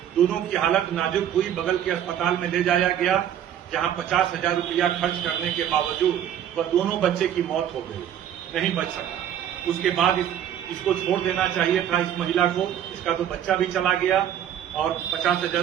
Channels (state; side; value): quieter; left; 10.1 dB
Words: दोनों की हालत नाजुक हुई, बगल के अस्पताल में ले जाया गया, जहां 50,000 रुपया खर्च करने के बावजूद वह दोनों बच्चे की मौत हो गई, नहीं बच सका। उसके बाद इसको छोड़ देना चाहिए था इस महिला को। इसका तो बच्चा भी चला गया, और 50,000